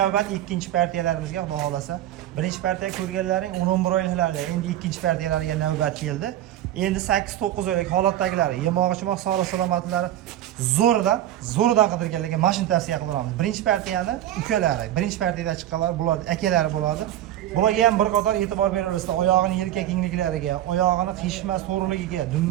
ikkinchi partiyalarimizga, xudo xolasa. Birinchi partiya ko'rganlaring 11 oyliklarda, endi ikkinchi partiyalariga navbat keldi. Endi 8-9 oylik holatdagilari, yemog'i-chimoq salomatlari zo'ridan qidirganlarga mashina tavsiya qilamiz. Birinchi partiyani ukalari, birinchi partiyada chiqqanlar bular akalari bo'ladi. Bularga ham bir qator e'tibor beraverasizlar. Oyog'ini yelka kengliklariga, oyog'ini qishma so'rligiga,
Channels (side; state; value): left; quieter; 12.8 dB